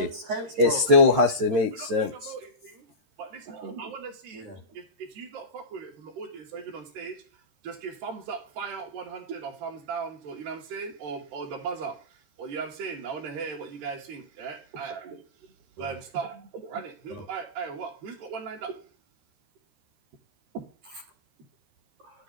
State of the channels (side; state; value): left; late; 13 ms